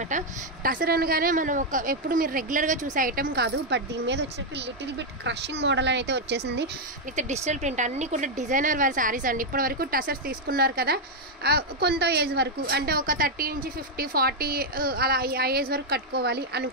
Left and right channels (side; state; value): both; normal; correlation 0.00